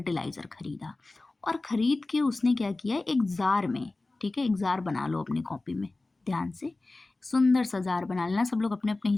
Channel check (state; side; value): quieter; right; 3.1 dB